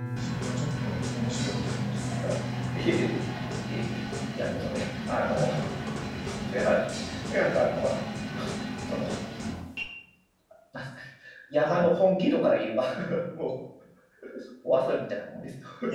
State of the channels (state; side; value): identical; both; correlation 1.00